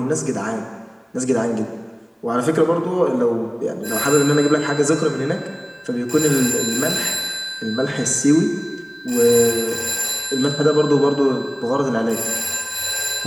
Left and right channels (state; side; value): identical; both; correlation 1.00